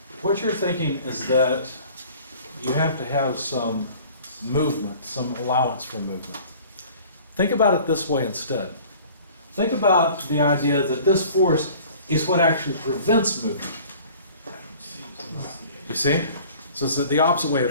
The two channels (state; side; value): inverted; both; correlation -0.48